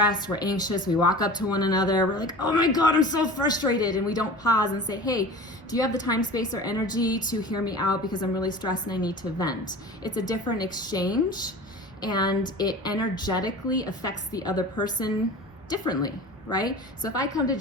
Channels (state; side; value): normal; both; correlation 0.37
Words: we're anxious, we walk up to one another, we're like, oh my God, I'm so frustrated. And we don't pause and say, hey, do you have the time, space, or energy to hear me out because I'm really stressed and I need to vent? It's a different exchange, and it energetically affects the other person differently, right? So if I come to